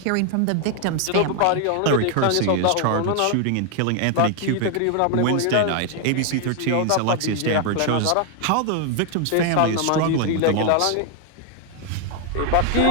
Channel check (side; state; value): both; different; correlation 0.00